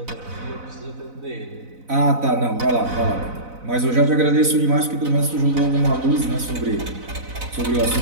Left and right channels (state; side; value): late; left; 4.0 ms